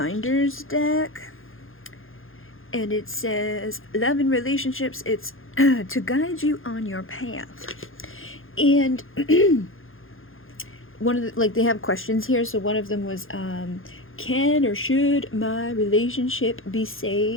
deck, and it says love and relationships. It's to guide you on your path. And one of the, like, they have questions here. So one of them was, can or should my relationship be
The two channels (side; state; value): right; late; 0.59 ms